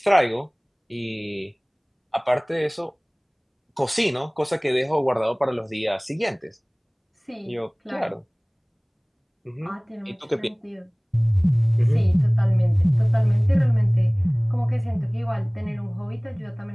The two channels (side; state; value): both; identical; correlation 1.00